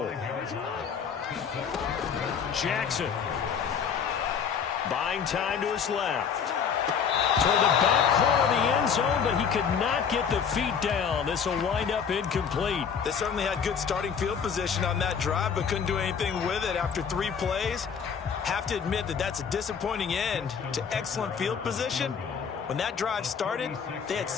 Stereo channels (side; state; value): right; quieter; 6.9 dB